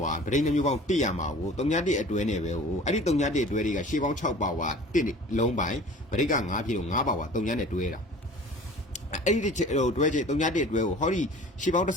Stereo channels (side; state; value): both; normal; correlation 0.44